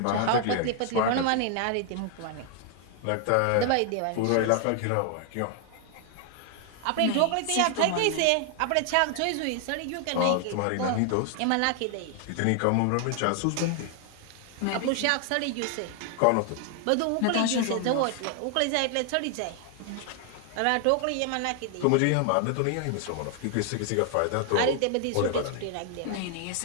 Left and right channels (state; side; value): different; both; correlation 0.00